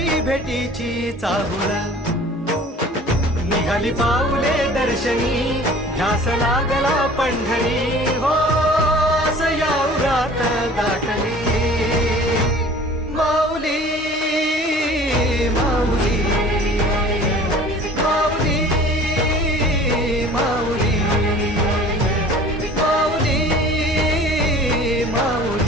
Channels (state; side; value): normal; both; correlation 0.46